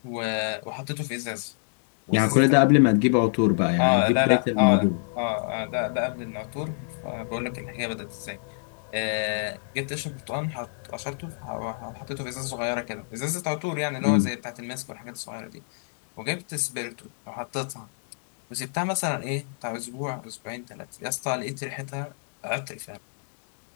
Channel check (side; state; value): right; silent; digital silence